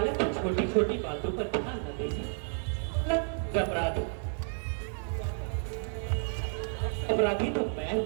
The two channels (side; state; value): left; silent; 57 dB below the other